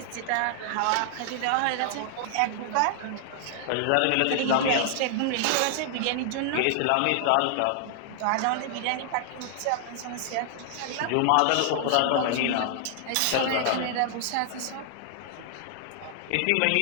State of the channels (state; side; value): different; both; correlation 0.00